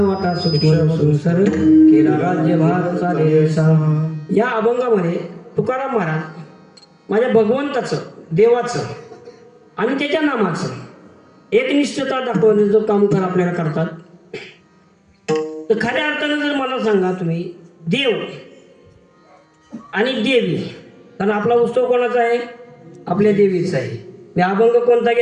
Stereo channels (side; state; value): both; identical; correlation 1.00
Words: सुसर केला राज्यभार चाले सा. या अभंगामध्ये तुकाराम महाराज माझ्या भगवंताचं, देवाचं आणि त्याच्या नामाचं एकनिष्ठता दाखवण्याचं काम आपल्याला करतात. तर खऱ्या अर्थानं जर मला सांगा तुम्ही, देव आणि देवी, कारण आपला उत्सव कोणाचा आहे? आपल्या देवीचा आहे. मी अभंग कोणता